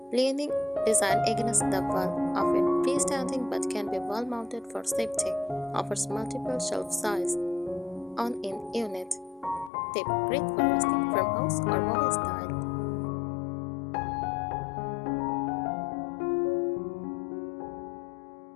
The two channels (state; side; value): drops out; right; at 9.7 s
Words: leaning design against the wall, often freestanding but can be wall mounted for safety. Offers multiple shelf size on in unit. Tip: great for rustic farmhouse or boho style.